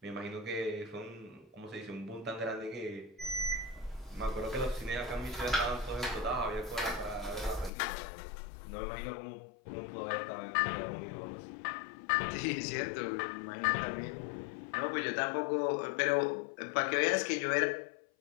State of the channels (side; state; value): right; drops out; at 7.7 s